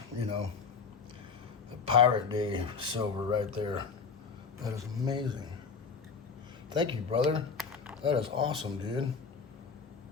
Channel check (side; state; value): right; quieter; 5.4 dB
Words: the Pirate Day silver right there. That is amazing. Thank you, brother. That is awesome, dude.